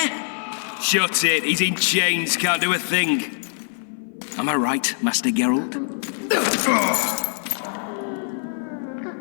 Shut it, he's in chains, can't do a thing. Am I right, Master Geralt?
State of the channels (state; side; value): silent; right; 56 dB below the other